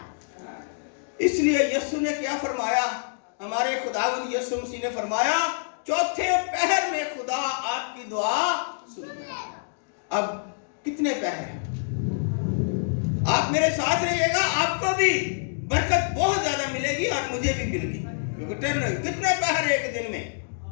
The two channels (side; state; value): right; silent; digital silence